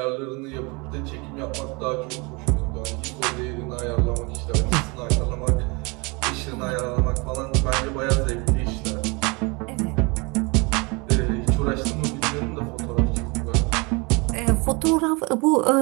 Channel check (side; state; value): left; quieter; 28.4 dB